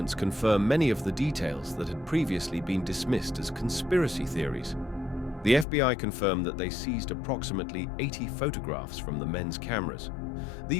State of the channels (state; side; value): drops out; right; at 5.7 s